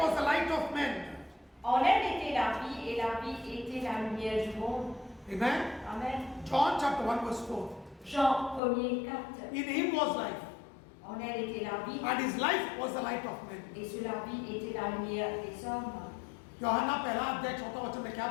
the light of men. En elle était la vie, et la vie était la lumière du monde. Amen. Amen. John chapter 1 verse 4. Jean 1er 4. In him was life, En elle était la vie, and his life was the light of men. et sur la vie était la lumière des hommes. यूहन्ना पहला अध्याय चौथा वचन में क्या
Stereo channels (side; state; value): right; drops out; at 8.6 s